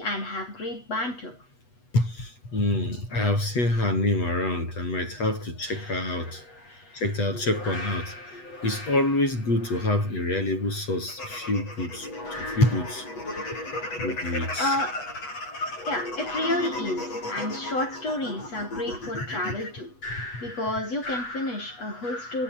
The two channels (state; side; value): late; right; 8.2 ms